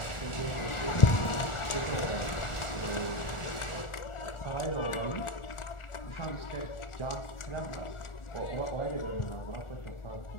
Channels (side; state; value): right; late; 1.4 ms